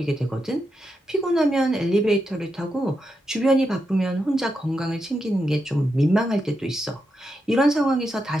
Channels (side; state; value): both; normal; correlation 0.85